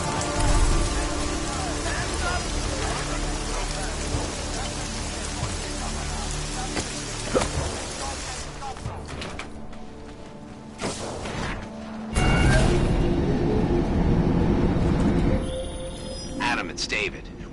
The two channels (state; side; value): identical; both; correlation 1.00